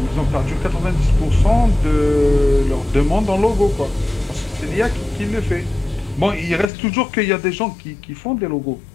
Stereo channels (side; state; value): right; drops out; at 6.7 s